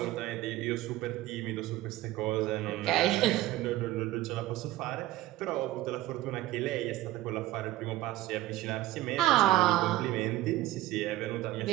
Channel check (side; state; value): left; quieter; 16.0 dB